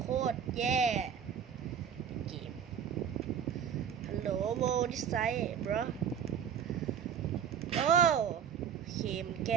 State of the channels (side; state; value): left; quieter; 8.1 dB